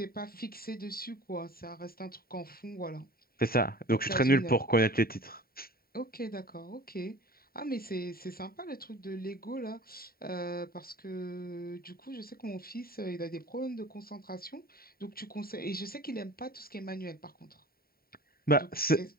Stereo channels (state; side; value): late; right; 0.43 ms